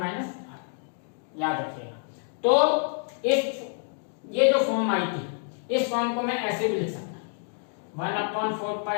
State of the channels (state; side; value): silent; right; 60 dB below the other